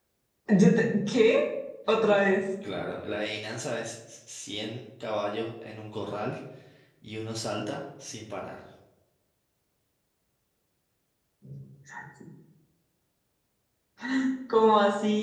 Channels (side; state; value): both; identical; correlation 1.00